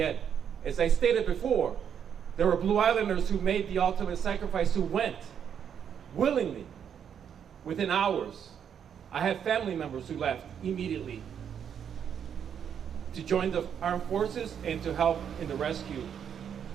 As I stated before, there were Blue Islanders who made the ultimate sacrifice, who went willingly within hours. I have family members who left immediately to join the armed forces and to help in the rescue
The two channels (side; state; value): left; quieter; 8.2 dB